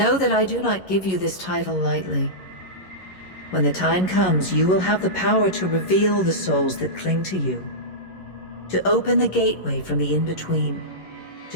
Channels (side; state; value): right; late; 11 ms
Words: that I do not give you this title lightly. When the time comes, you will have the power to reveal the souls that cling to you, to open the gateway from the in-between